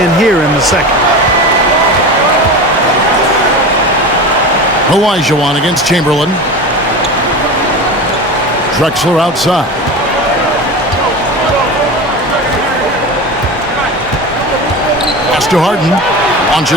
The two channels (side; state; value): both; normal; correlation 0.28